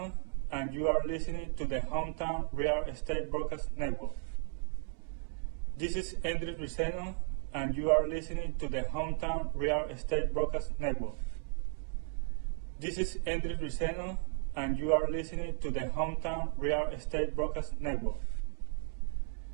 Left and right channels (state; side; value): silent; left; 55 dB below the other